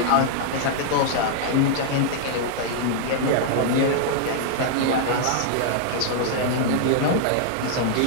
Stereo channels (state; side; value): different; both; correlation -0.01